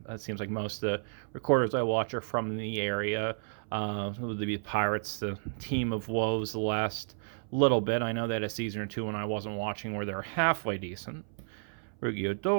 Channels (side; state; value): left; silent; 57 dB below the other